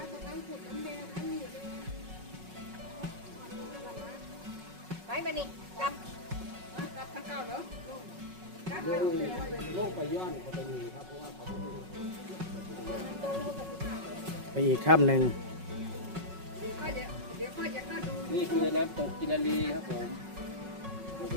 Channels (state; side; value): late; left; 5.4 ms